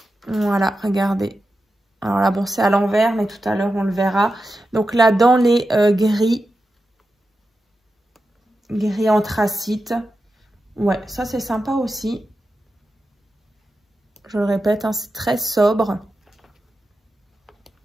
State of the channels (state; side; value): normal; both; correlation 0.90